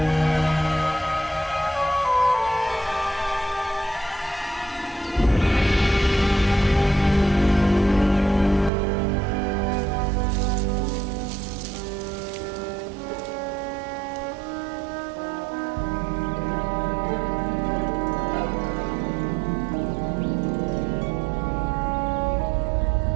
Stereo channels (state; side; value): drops out; left; at 8.7 s